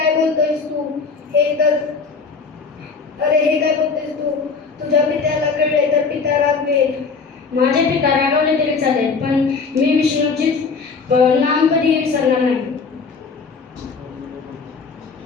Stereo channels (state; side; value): quieter; right; 4.9 dB